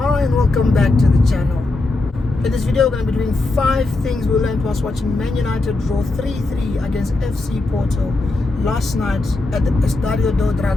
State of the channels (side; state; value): right; quieter; 3.1 dB